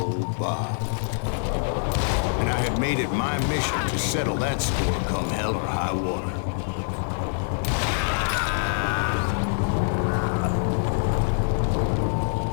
Bob. And I had made it my mission to settle that score come hell or high water.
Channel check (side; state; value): right; silent; digital silence